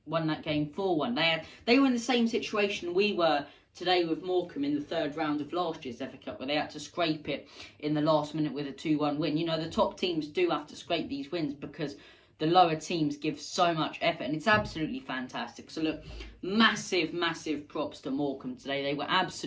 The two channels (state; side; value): identical; both; correlation 1.00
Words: Won that game 4-1. They were in the same situation we were today with Morecambe in the third round of last year's FA Cup, where they had to scrape it in the last minute with a 2-1 win. The top teams do have to scrape these wins because the lower teams give so much effort, and it's absolutely fantastic. So look, massive props to Morecambe today. They were